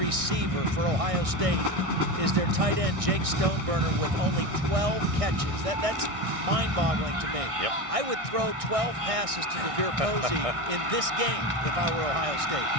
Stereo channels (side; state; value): left; late; 1.6 ms